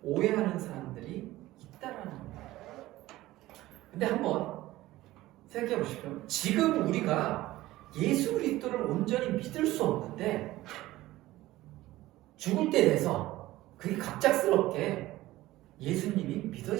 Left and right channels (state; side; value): quieter; left; 16.8 dB